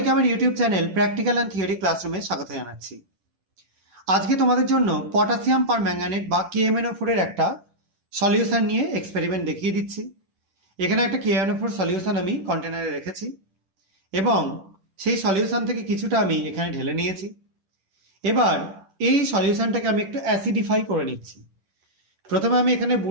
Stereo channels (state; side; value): late; left; 10 ms